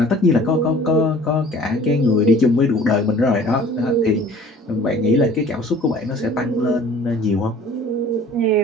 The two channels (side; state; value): both; normal; correlation 0.49